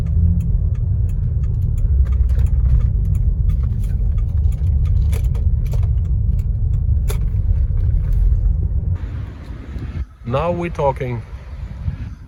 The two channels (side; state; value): both; identical; correlation 1.00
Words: Now we're talking.